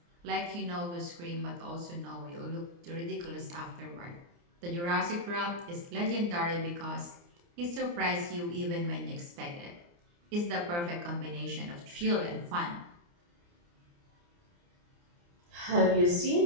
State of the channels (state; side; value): late; left; 29 ms